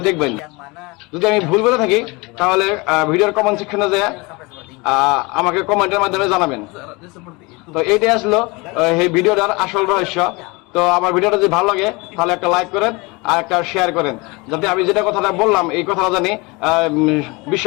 দেখবেন। যদি আমি ভুল বলে থাকি তাহলে ভিডিওর কমেন্ট সেকশনে যায় আমাকে কমেন্টের মাধ্যমে জানাবেন। তো এইটাই আসলো এই ভিডিওটার আসল রহস্য। তো আমার ভিডিওটা যদি ভালো লাগে তাহলে একটা লাইক করেন আর একটা শেয়ার করেন, যাতে আমি যেটা কথাটা বললাম এই কথাটা জানি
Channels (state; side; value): quieter; right; 26.0 dB